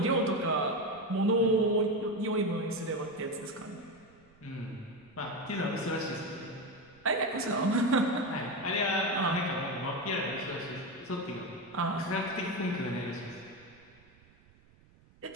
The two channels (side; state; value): right; noise; rumble, 28 dB below the sound